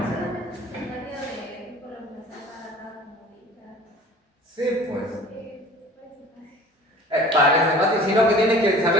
Sí, pues. Parece fácil, sino que tienes que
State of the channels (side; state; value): both; normal; correlation 0.46